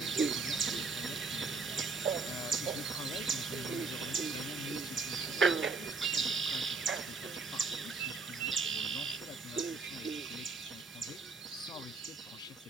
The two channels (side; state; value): left; quieter; 4.2 dB